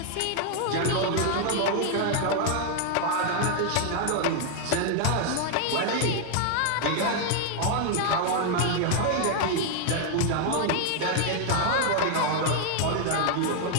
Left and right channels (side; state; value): both; different; correlation 0.00